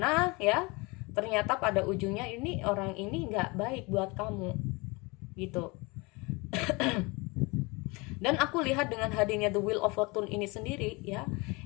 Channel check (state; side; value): quieter; right; 26.4 dB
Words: ya, ternyata pada ujungnya ini orang ini nggak baik buat kamu. Gitu. Dan aku lihat dengan hadirnya The Wheel of Fortune ini sendiri ya,